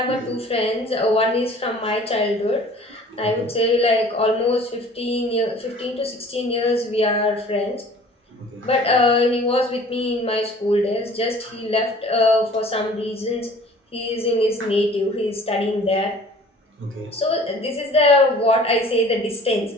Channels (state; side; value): normal; both; correlation 0.49